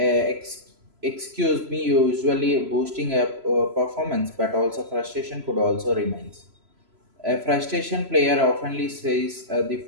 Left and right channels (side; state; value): left; late; 3.0 ms